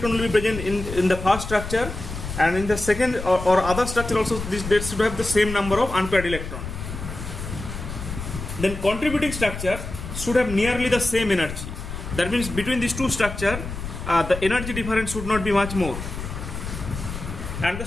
will be present in the first structure, and in the second or other structure also, they should have the same number of unpaired electrons. Then contributing structure should have nearly the same energy. That means between these two structures, the energy difference should not be much more. And the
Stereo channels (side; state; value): left; noise; rumble, 8 dB below the sound